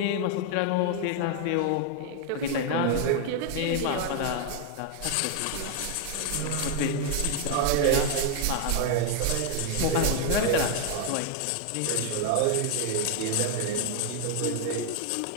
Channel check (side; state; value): both; different; correlation 0.00